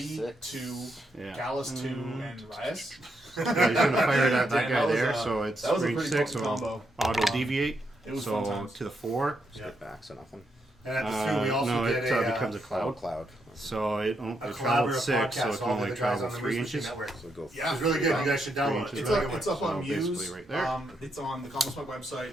6. 2, Yeah. Gallus 2, and Riot. Yeah, he's gonna fire it at that Damn, guy that was, there, so it's that was a range pretty 6, potent so combo. auto deviate. It was so fun times. to the 4. Yeah. Get back, so nothing. And at the Sioux, we also no, get it a, becomes a cloud. Cloud. So it a travels collaborative 6, so podcast. it can All only the guys travel on the 3 Moose inches. Machine Network. So go. Yeah. It's really good. You guys should download it. It's It's really up, good. it's up on So Muse. basically right there. It's on the Common Smoke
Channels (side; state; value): both; normal; correlation 0.80